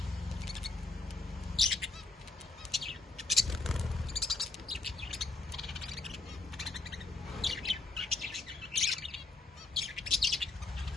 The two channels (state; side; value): quieter; right; 3.5 dB